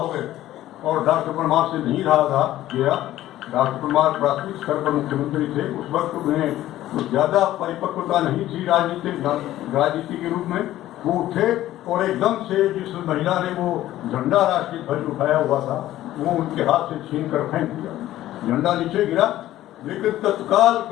गए और डॉक्टर परमार से नहीं रहा था गया। डॉक्टर परमार प्राथमिक स्तर पर मुख्यमंत्री थे, उस वक्त उन्हें तो ज़्यादा परिपक्वता नहीं थी राजनीति के रूप में। वो उठे और एकदम से जिस महिला ने वो झंडा राष्ट्रीय ध्वज उठाया हुआ था वो उनके हाथ से छीन कर फेंक दिया, झंडा नीचे गिरा। लेकिन तत्काल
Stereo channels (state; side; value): quieter; right; 14.2 dB